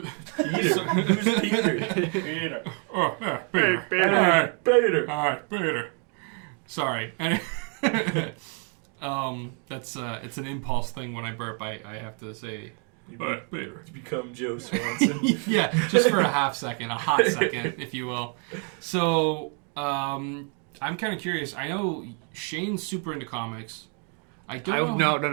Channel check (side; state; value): left; quieter; 39.8 dB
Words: Who's Peter? Peter. Oh, yeah, Peter. Peter. All right, Peter. Sorry. That's it's an impulse thing when I burp. I have to say. Peter. It's become Joe Swanson. Yeah, just for a hot second, if you will. So, I'm kind of curious. I know Shane's super into comics. I don't